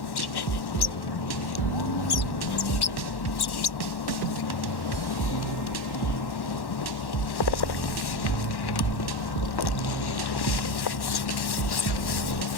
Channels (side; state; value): right; late; 1.1 ms